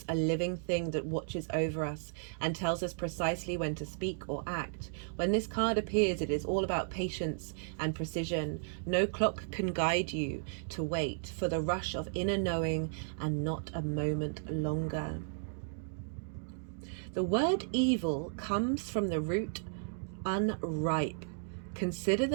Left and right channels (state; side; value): silent; left; digital silence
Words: a living thing that watches over us and tells us precisely when to speak or act. When this card appears, it is all about patience and precision. No clock can guide you to wait for the rush of inner knowing and not a moment longer. The word evil comes from the root unripe. Consider